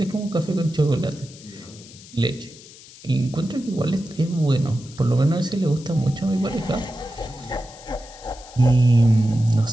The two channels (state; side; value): noise; left; hiss, 20 dB below the sound